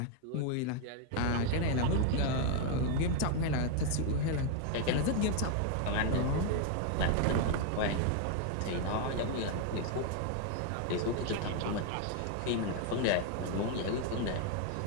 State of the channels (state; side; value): different; both; correlation 0.01